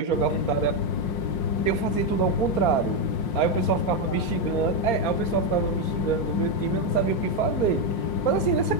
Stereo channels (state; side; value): late; right; 5.6 ms